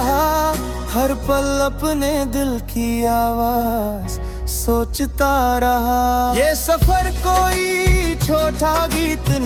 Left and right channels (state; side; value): identical; both; correlation 1.00